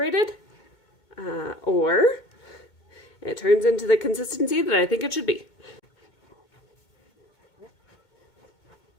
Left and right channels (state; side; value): late; right; 2.2 ms